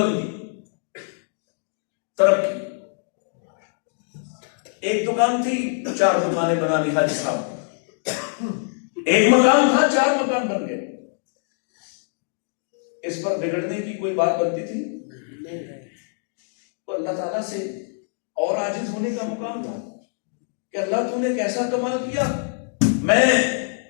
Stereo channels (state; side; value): silent; right; digital silence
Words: ترقی. ایک دکان تھی، 4 دکانیں بنا لی حاجی صاحب. ایک مکان تھا، 4 مکان بن گئے. اس پر بگڑنے کی کوئی بات بنتی تھی؟ تو اللہ تعالیٰ سے اور عاجز ہونے کا مقام تھا کہ اللہ تو نے کیسا کمال کیا. میں